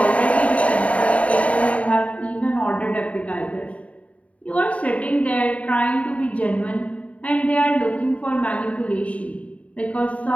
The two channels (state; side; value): late; right; 0.066 ms